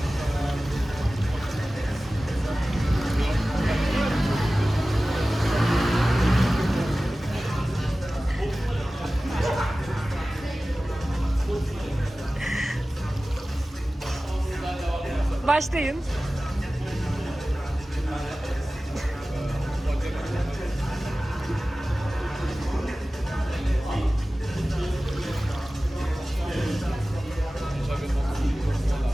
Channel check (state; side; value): normal; both; correlation 0.96